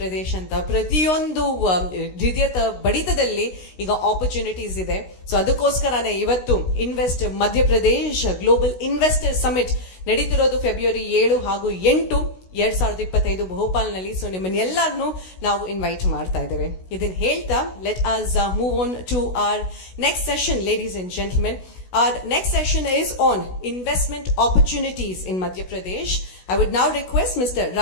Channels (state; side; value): late; right; 16 ms